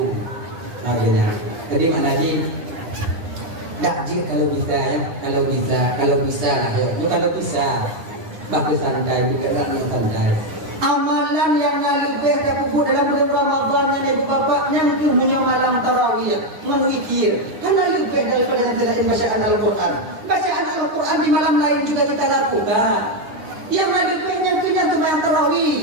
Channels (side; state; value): left; late; 10 ms